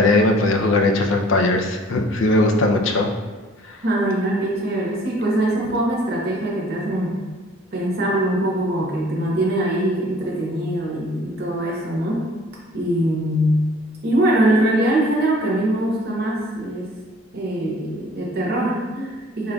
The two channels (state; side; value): normal; both; correlation 0.53